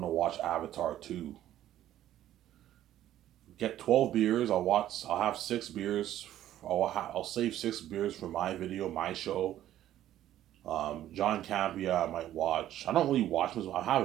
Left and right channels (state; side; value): quieter; left; 12.6 dB